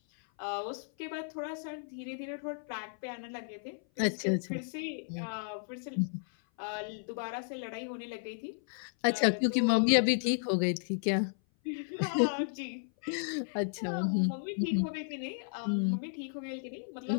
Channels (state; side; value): silent; right; 55 dB below the other